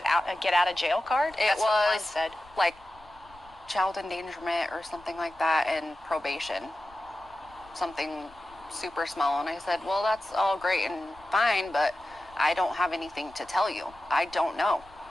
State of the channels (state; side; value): noise; left; rumble, 25 dB below the sound